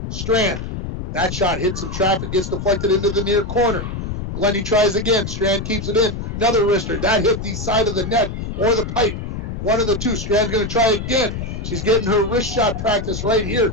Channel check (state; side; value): noise; left; rumble, 5 dB below the sound